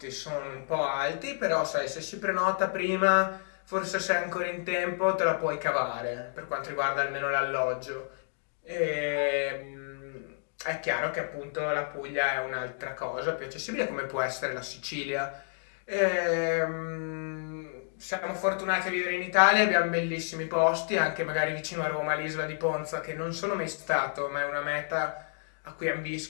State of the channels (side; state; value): right; silent; digital silence